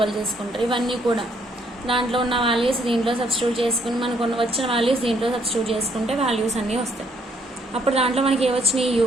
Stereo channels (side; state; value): both; normal; correlation 0.68